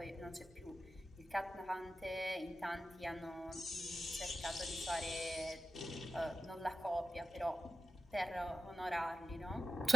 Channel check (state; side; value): normal; both; correlation 0.93